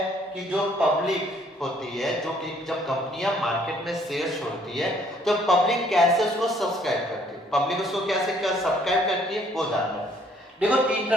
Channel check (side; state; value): both; normal; correlation 0.63